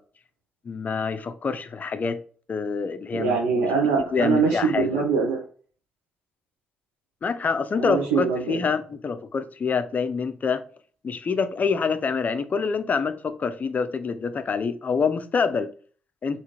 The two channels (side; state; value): both; normal; correlation 0.64